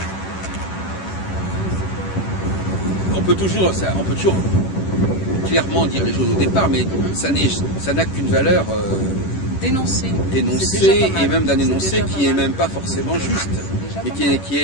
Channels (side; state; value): right; late; 11 ms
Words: on peut toujours clairement dire les choses au départ, mais ça n'a qu'une valeur d'énoncer, et même d'un énoncé qui n'est même pas forcément juste, mais qui